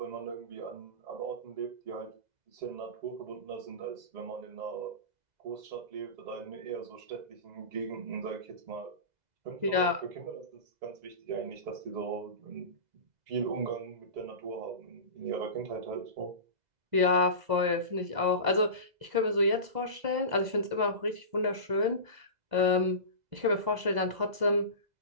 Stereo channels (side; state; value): left; late; 2.0 ms